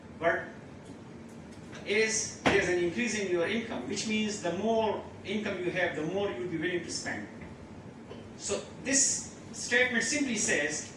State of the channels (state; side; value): identical; both; correlation 1.00